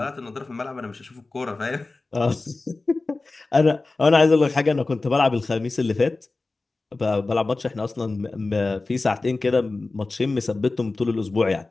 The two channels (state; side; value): quieter; right; 3.4 dB